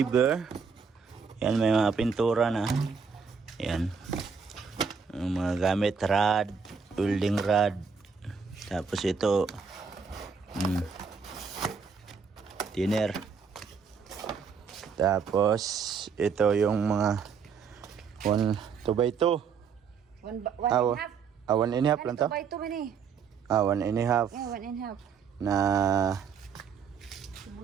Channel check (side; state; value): left; quieter; 5.9 dB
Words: Yan, may mga pintura na. Yan. Yung mga gamit, rod, welding rod. Tapos ito, thinner. Tapos ito yung mga 2x2. One and a half. 1.5 lang to? 2x2 man eh. 1.5 Yeah, 1.5. na